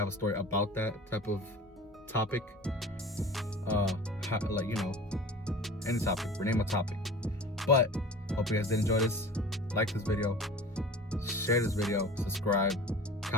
a story about that type of topic. Any topic, rename a topic. But hope you guys did enjoy this. Like this video, share this video, subscribe,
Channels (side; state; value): both; normal; correlation 0.39